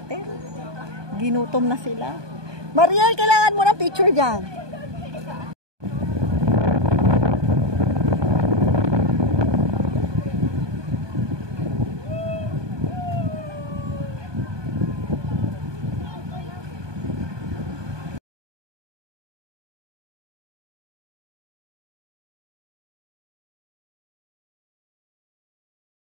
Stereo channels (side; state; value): left; late; 1.2 ms